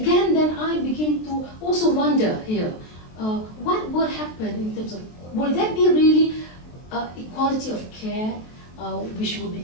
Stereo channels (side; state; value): right; late; 23 ms